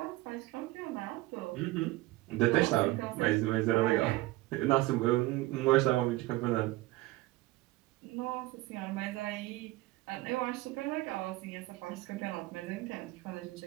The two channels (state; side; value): quieter; left; 19.1 dB